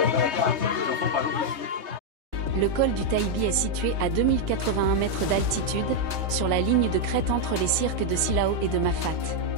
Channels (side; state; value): left; late; 3.2 ms